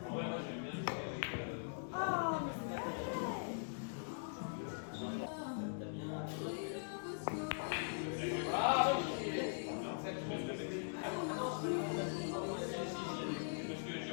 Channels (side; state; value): right; silent; digital silence